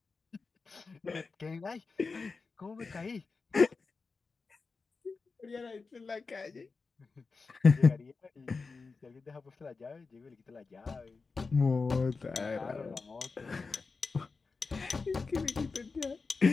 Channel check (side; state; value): right; quieter; 4.4 dB